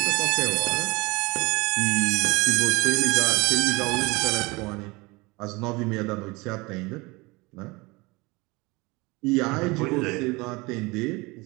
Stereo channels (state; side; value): quieter; left; 24.5 dB